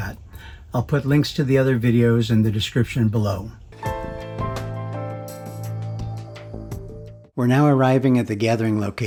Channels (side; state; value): both; identical; correlation 1.00